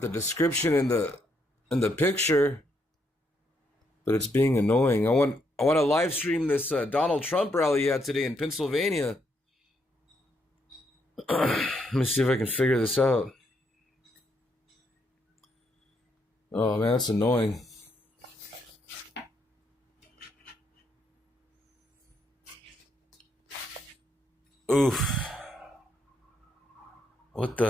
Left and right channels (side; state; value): both; normal; correlation 0.76